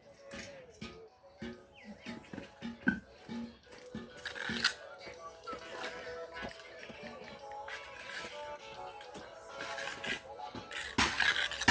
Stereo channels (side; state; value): both; identical; correlation 1.00